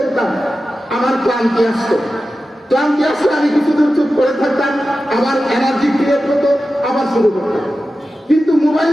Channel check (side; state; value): both; normal; correlation 0.93